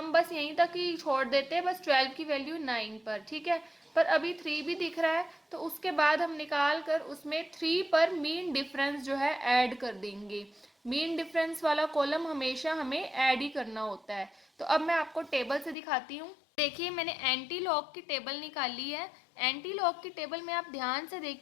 बस यहीं तक ही छोड़ देते, बस 12 की वैल्यू 9 पर। ठीक है, पर अभी 3 भी दिख रहा है तो उसके बाद हम निकाल कर उसमें 3 पर मीन डिफरेंस जो है ऐड कर देंगे। मीन डिफरेंस वाला कॉलम हमेशा हमें ऐड ही करना होता है। तो अब मैं आपको टेबल से दिखाती हूँ। देखिए, मैंने एंटी लॉग की टेबल निकाली है। एंटी लॉग की टेबल में आप ध्यान से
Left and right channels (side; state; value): right; drops out; at 15.8 s